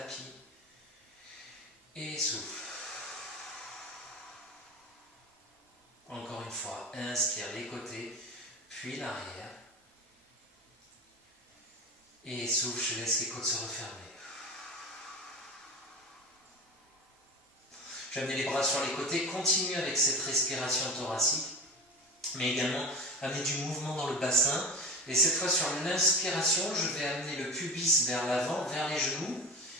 Et souffle. Encore une fois, inspire les côtés, puis l'arrière. Et souffle, je laisse les côtes se refermer. Je vais amener les bras sur les côtés, continue avec cette respiration thoracique, mais également amener du mouvement dans le bassin. Et cette fois sur l'inspiration, je vais amener le pubis vers l'avant, vers les genoux,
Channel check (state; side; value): normal; both; correlation 0.29